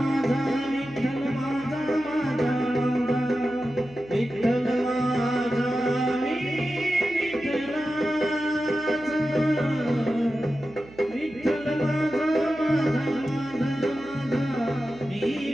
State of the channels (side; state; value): right; noise; hum, 20 dB below the sound